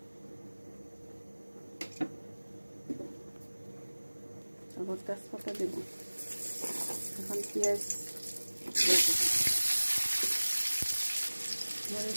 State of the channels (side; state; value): both; inverted; correlation -1.00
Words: তারপর তেজপাতা দেব, এখন পেঁয়াজ